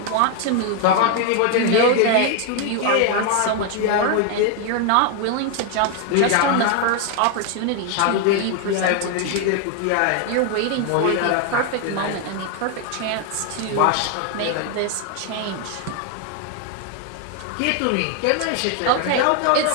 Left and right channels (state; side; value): different; both; correlation 0.01